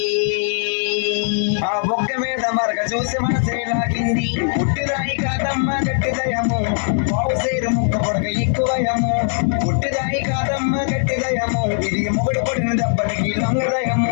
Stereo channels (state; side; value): silent; right; digital silence